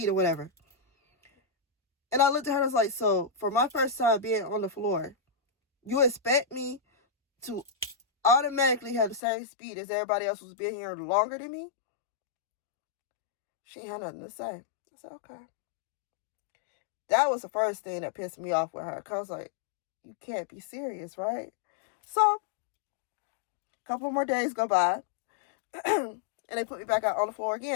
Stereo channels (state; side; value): drops out; right; at 9.2 s